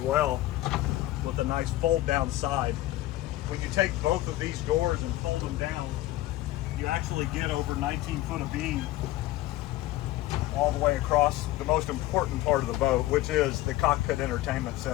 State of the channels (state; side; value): quieter; right; 16.5 dB